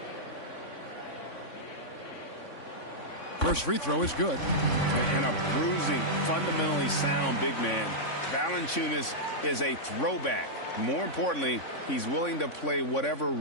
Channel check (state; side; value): late; right; 3.5 ms